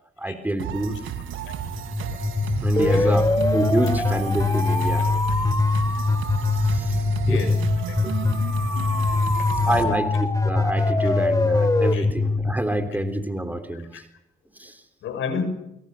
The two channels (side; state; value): both; normal; correlation 0.81